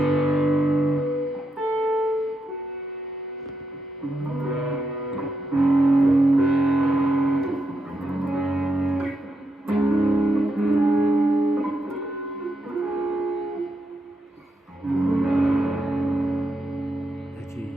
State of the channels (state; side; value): normal; both; correlation 0.83